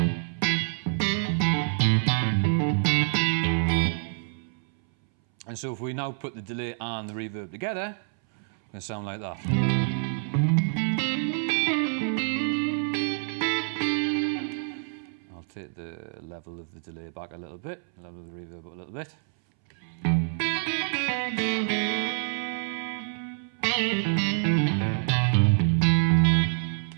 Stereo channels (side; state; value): left; silent; 60 dB below the other